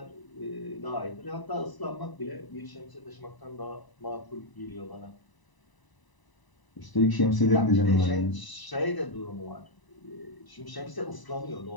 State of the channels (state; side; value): late; right; 1.0 ms